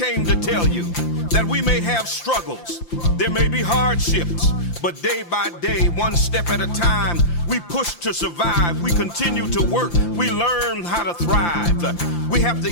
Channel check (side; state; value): right; late; 5.8 ms